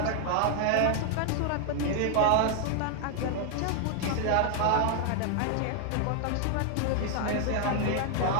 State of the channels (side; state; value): both; different; correlation 0.00